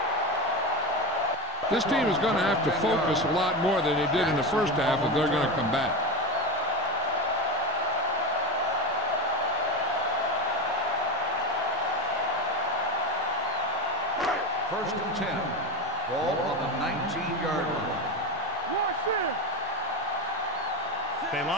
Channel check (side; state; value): both; normal; correlation 0.19